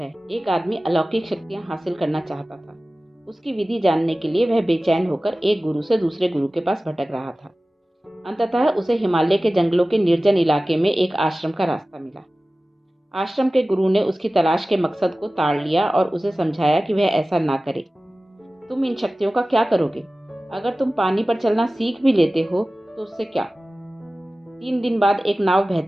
एक आदमी अलौकिक शक्तियां हासिल करना चाहता था। उसकी विधि जानने के लिए वह बेचैन होकर एक गुरु से दूसरे गुरु के पास भटक रहा था। अंततः उसे हिमालय के जंगलों के निर्जन इलाके में एक आश्रम का रास्ता मिला। आश्रम के गुरु ने उसकी तलाश के मकसद को ताड़ लिया और उसे समझाया कि वह ऐसा ना करे। तुम इन शक्तियों का क्या करोगे? अगर तुम पानी पर चलना सीख भी लेते हो तो उससे क्या? 3 दिन बाद एक नाव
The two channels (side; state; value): both; normal; correlation 0.97